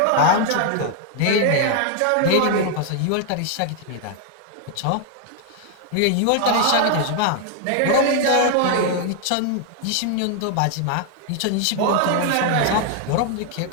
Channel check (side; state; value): both; different; correlation 0.00